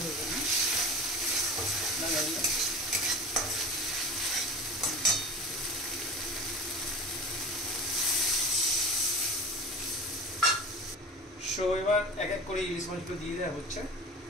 হয়ে যাবে না জানি না। সো এবার এক এক করে ইলিশ মাছগুলো দিয়ে দেওয়া হচ্ছে।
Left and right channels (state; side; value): normal; both; correlation 0.33